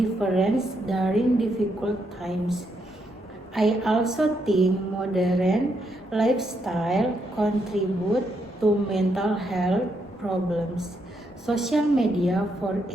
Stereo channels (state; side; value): normal; both; correlation 0.78